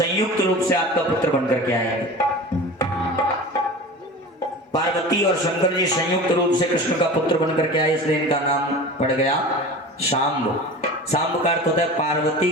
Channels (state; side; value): normal; both; correlation 0.35